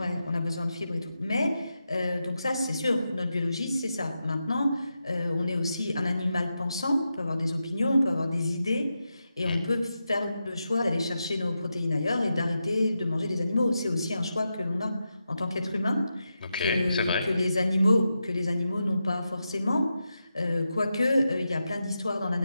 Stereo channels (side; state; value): both; inverted; correlation -0.88